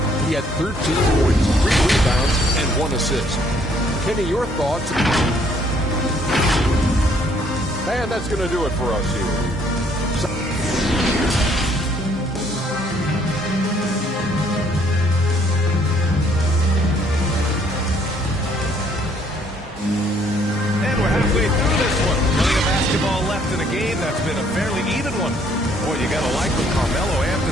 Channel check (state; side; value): normal; both; correlation 0.64